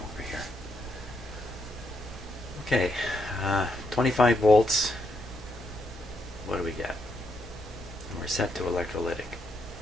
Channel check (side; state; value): both; normal; correlation 0.79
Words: here. Okay, 25 volts. What do we get? And we're set to electrolytic.